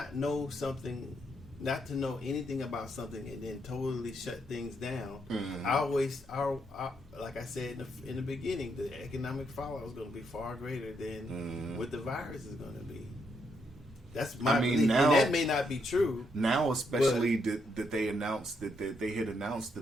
know something, not to know anything about something, and then totally shut things down. Like I said in the beginning, the economic fallout is going to be far greater than what the virus is going to be. That's my belief. Now, and that may not be true. Now, especially that they announced that they had announced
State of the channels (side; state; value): both; normal; correlation 0.77